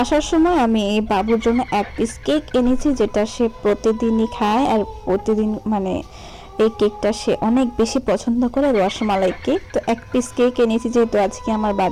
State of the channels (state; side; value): identical; both; correlation 1.00